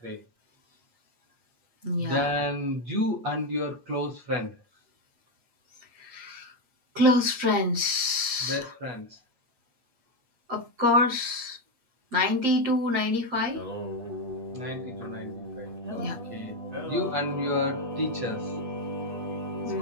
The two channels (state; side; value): late; left; 8.5 ms